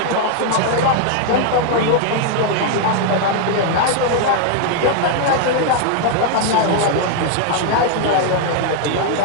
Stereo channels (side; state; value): both; different; correlation 0.00